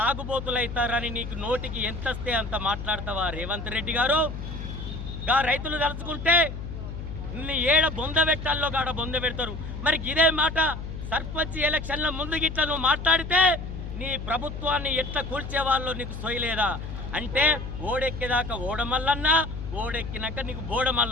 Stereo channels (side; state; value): left; noise; hum, 8 dB below the sound